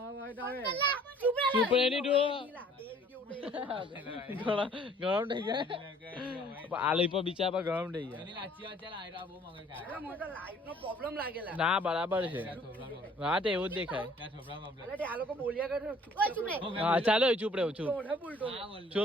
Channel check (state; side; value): normal; both; correlation 0.56